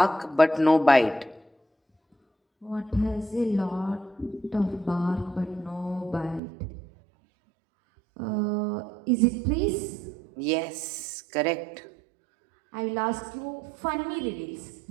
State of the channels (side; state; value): left; drops out; at 6.4 s